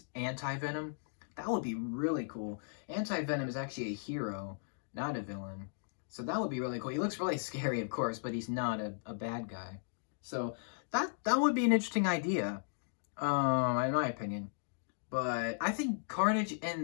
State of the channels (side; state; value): right; silent; digital silence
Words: anti Venom. That would be really cool. Anti Venom is actually a hero, not a villain. So that would be really cool. He looks really scary, of course, but he's not a bad guy. So that would be an interesting idea, in my opinion. But I think Carnage